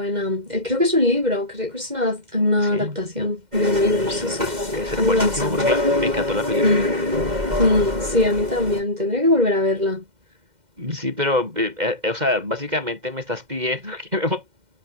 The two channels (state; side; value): late; left; 2.1 ms